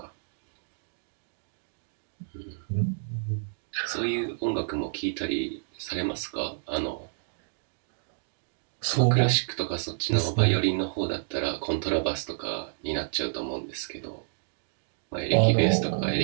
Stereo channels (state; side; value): silent; left; digital silence